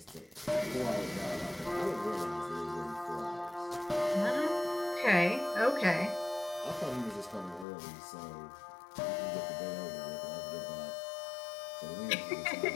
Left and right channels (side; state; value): right; drops out; at 7.7 s